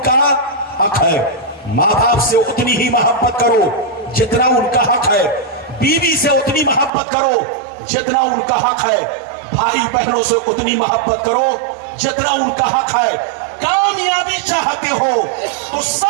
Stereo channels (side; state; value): left; drops out; at 6.9 s